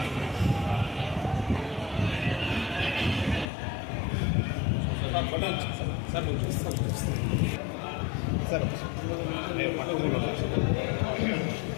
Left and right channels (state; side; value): drops out; right; at 3.5 s